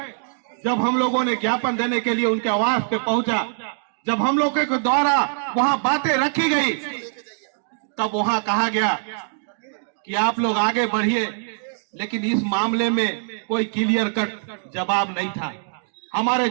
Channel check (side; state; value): left; silent; digital silence